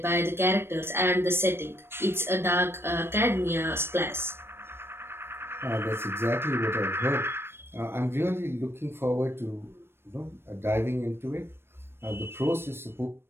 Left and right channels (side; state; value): left; late; 0.12 ms